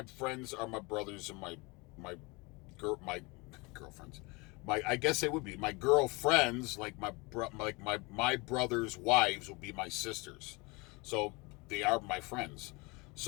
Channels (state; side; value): quieter; right; 26.7 dB